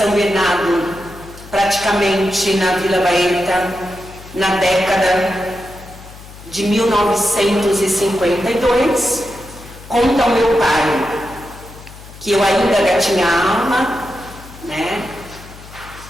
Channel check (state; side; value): noise; left; hum, 18 dB below the sound